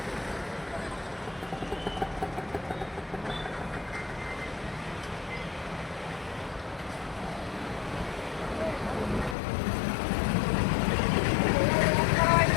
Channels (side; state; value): right; drops out; at 9.3 s